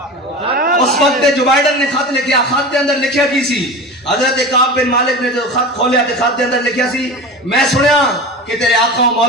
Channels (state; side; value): normal; both; correlation 0.31